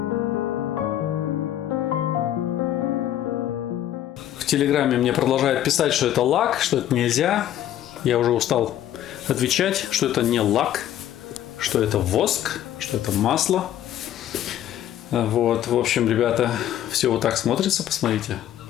Телеграме мне продолжают писать, что это лак, что это нельзя. Я уже устал отвечать, что это не лак, что это воск, что это масло. Вот, в общем, ребята, все вот так смотрится, посмотрите.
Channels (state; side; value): quieter; right; 11.8 dB